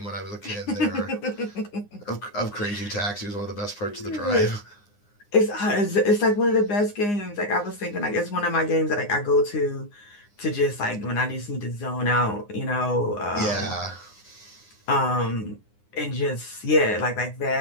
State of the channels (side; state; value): right; late; 9.7 ms